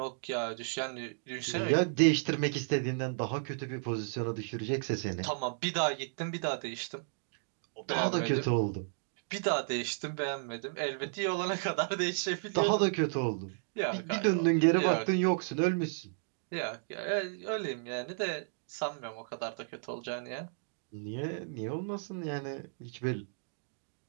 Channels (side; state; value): left; silent; digital silence